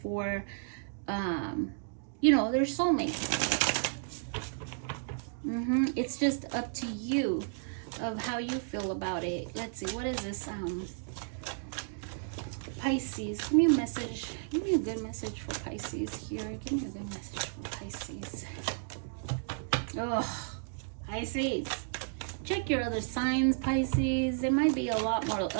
you know, their soulmate. It's just up to you of how you feel about it. Let's see, what is this? Pisces, give me a message. Give me a good message for Pisces here. Give me a good message for Pisces. Oh, Pisces. Check your other signs, Pisces. They might be a lot more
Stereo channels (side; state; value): left; silent; digital silence